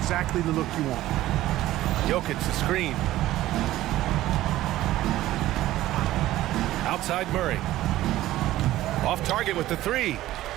the look you want. Jokic the screen. Outside Murray. Off target with the 3.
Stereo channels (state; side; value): quieter; left; 15.3 dB